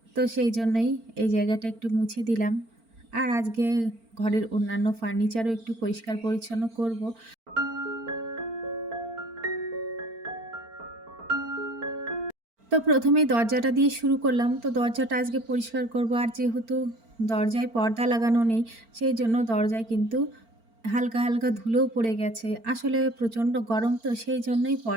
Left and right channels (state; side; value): late; left; 4.4 ms